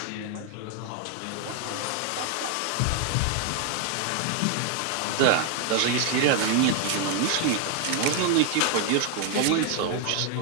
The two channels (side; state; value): both; different; correlation 0.00